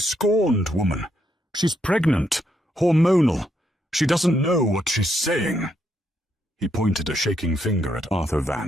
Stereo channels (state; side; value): normal; both; correlation 0.77